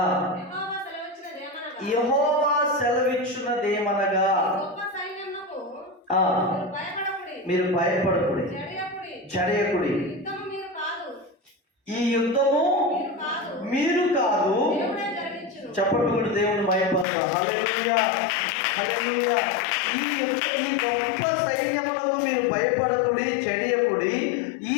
యెహోవా సెలవిచ్చున్నదేమనగా మీరు భయపడకుడి, జడియకుడి. ఈ యుద్ధము మీరు కాదు. చెప్పండి కూడా దేవుడు భయపడతారు. హల్లెలూయా, హల్లెలూయా. ఈ గొప్ప సైన్యములకు మీరు భయపడకుడి, చెడియకుడి. ఈ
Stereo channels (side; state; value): right; drops out; at 17.1 s